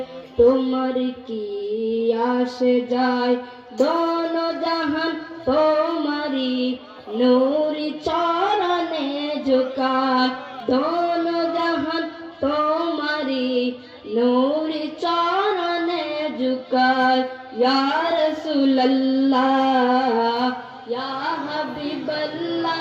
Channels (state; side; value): identical; both; correlation 1.00